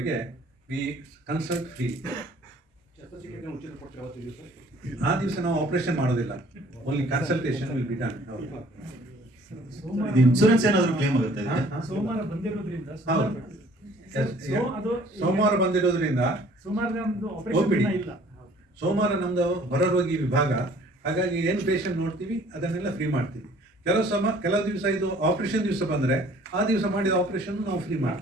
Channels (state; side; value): normal; both; correlation 0.55